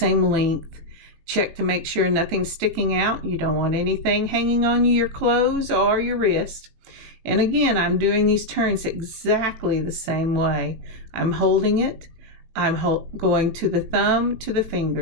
length. Check to make sure nothing's sticking out. You don't want anything hanging on your clothes or your wrist. And again, I'm doing these turns exactly the same way. I'm holding it. I'm going to the thumb, to the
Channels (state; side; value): late; left; 18 ms